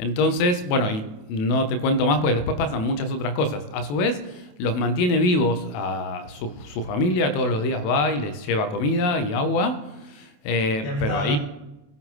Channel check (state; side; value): late; right; 28 ms